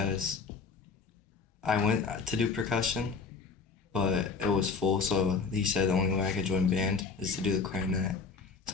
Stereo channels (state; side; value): quieter; right; 4.9 dB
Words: I went to do percussion, but it was full, so he said the only way I could join band is to do the clarinet.